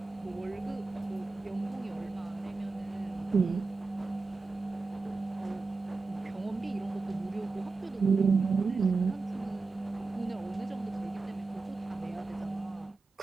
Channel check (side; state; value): left; quieter; 3.9 dB